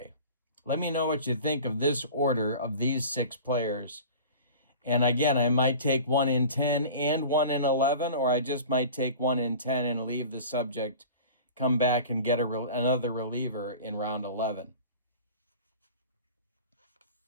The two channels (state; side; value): inverted; both; correlation -0.39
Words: Let me know what you think of this order of these 6 players. And again, I might take 1 in 10 and 1 in 11, or I just might take 1 in 10 and leave the subject, come back and get another reliever in round 11.